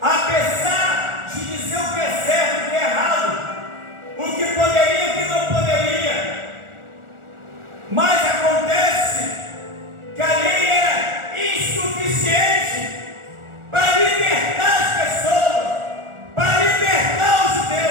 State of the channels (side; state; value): left; late; 1.4 ms